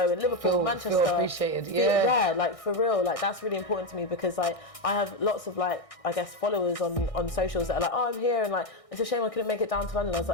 in Liverpool, Manchester feel appreciated. Like for real, like that's really important to me, because like I have lots of like I guess followers on socials that are like, oh, I'm here, and like it's a shame I couldn't make it down to London. I was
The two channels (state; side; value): late; right; 1.6 ms